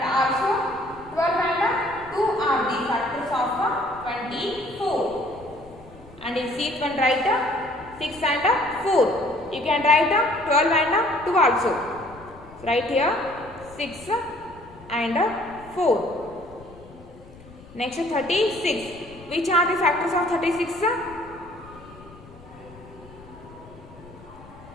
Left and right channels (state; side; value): noise; left; rumble, 21 dB below the sound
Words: also 12 and 2 are the factors of 24. And in sheet 1 write 6 and 4. You can write 12 and 2 also. So write here 6 and 4. Next 36. Which are the factors of 36?